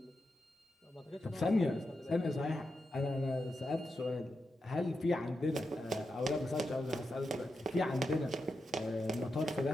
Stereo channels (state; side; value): normal; both; correlation 0.88